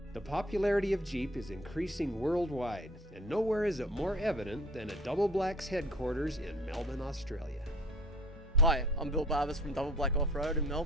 The popularity of Jeep is increasing worldwide, and nowhere is it more evident than at Double Black's headquarters in Melbourne, Australia. Hi, I'm Bill Barbers from Double Black Off-Road in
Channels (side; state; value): both; normal; correlation 0.49